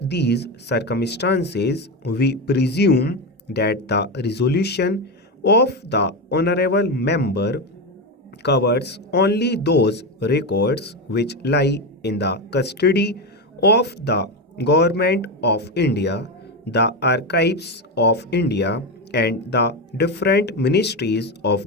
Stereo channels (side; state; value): both; normal; correlation 0.14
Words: these circumstances, we presume that the resolution of the honorable member covers only those records which lie in the custody of the Government of India, the Archives of India, and the different ministries